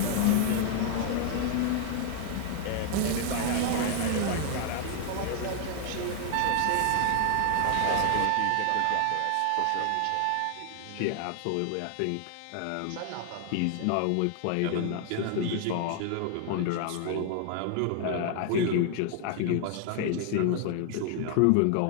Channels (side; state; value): both; different; correlation 0.00